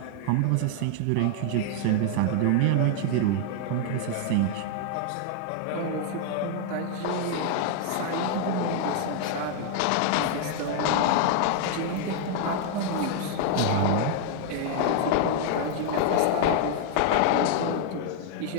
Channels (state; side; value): different; both; correlation 0.00